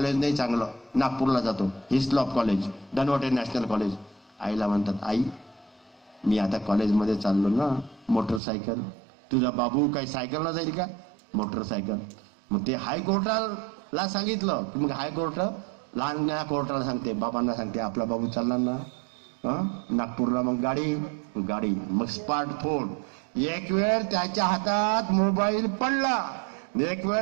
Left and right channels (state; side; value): drops out; left; at 8.4 s